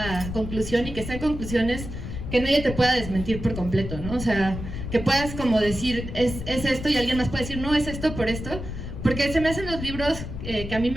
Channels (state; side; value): noise; left; rumble, 8 dB below the sound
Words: conclusión y que sean conclusiones que nadie te pueda desmentir por completo, ¿no? O sea, que puedas como decir, es esto, y alguien más puede decir, no, es esto por esto. Porque se me hacen los libros que a mí